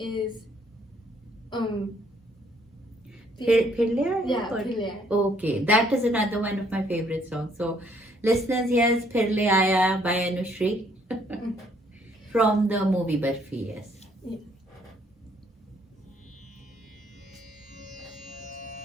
Phirle? Yeah, Phirle. Okay, that is another one of my favorite songs. So listeners, here's Phirle Aaya by Anushree from the movie Barfi. Yes. Yeah.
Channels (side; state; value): both; normal; correlation 0.66